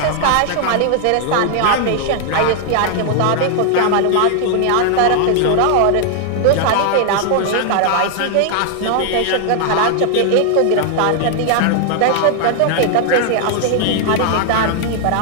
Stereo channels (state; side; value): different; both; correlation 0.00